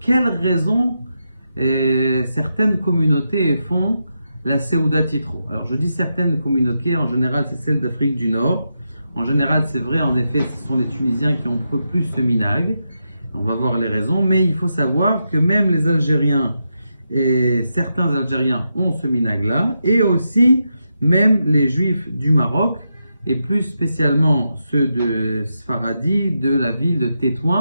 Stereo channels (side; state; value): both; inverted; correlation -0.85